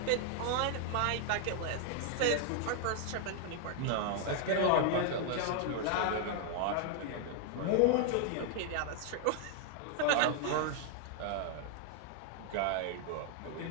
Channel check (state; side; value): different; both; correlation 0.00